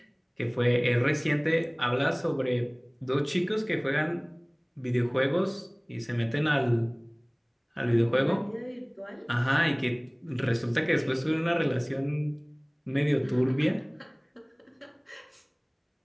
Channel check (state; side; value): identical; both; correlation 1.00